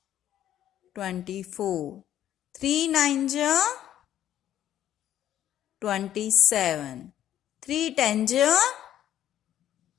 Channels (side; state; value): right; quieter; 11.6 dB